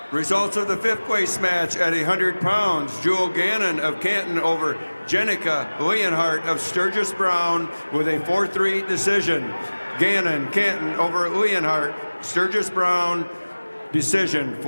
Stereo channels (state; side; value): inverted; both; correlation -1.00